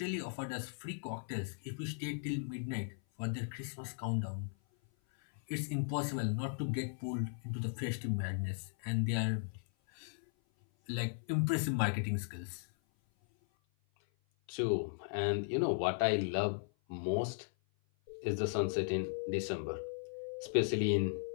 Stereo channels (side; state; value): right; silent; 53 dB below the other